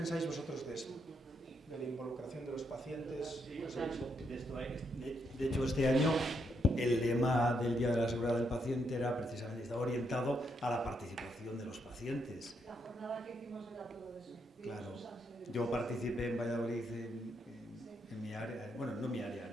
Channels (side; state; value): both; normal; correlation 0.78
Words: vosotros de esto, de la involucración de los pacientes. Sí, de hecho, este año el lema del Día de la Seguridad del Paciente era precisamente, estaba orientado a la participación de los pacientes. La jornada que hicimos era todo eso. Claro, yo participé en Valladolid en mi área, bueno, no mi área,